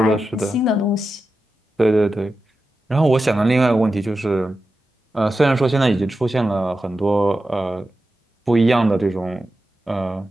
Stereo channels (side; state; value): both; normal; correlation 0.91